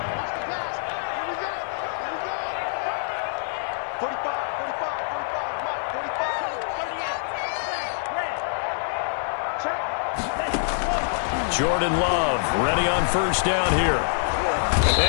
45, 45, 45, 38. Check. Jordan Love ready on 1st down here.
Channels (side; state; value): right; silent; digital silence